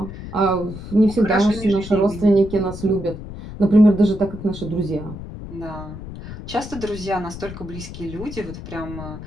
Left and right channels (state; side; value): noise; left; rumble, 11 dB below the sound